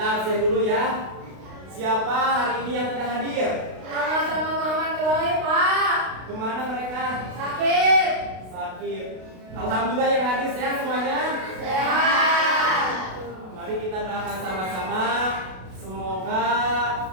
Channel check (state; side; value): late; left; 32 ms